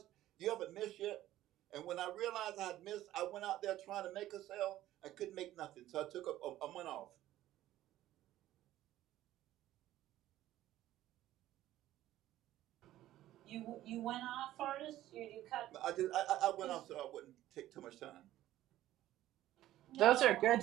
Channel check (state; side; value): quieter; left; 14.2 dB